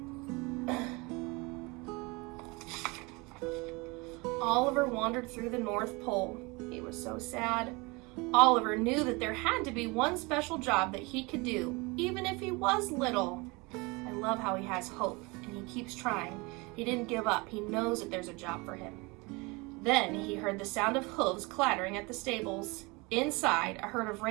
Oliver wandered through the North Pole. He was so sad. Oliver knew that there had to be one special job that he could do, even if he was little. I love how he has hope, and he keeps trying. He didn't give up. He knows that there's a job for him. Then he heard the sound of hooves clattering at the stables. Inside, a herd of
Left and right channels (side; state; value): left; quieter; 26.3 dB